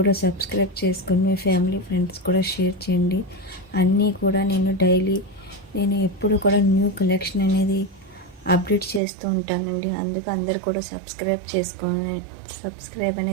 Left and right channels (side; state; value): left; drops out; at 9.0 s